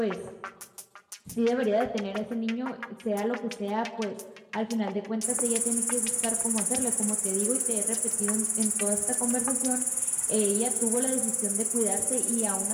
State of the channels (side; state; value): both; identical; correlation 1.00